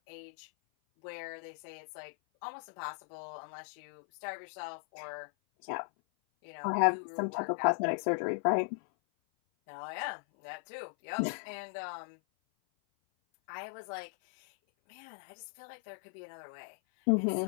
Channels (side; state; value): right; silent; 53 dB below the other